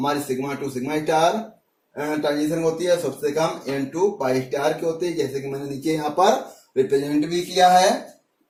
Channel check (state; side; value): identical; both; correlation 1.00